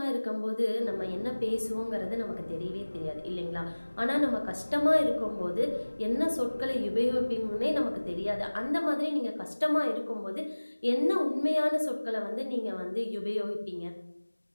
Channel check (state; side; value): inverted; both; correlation -1.00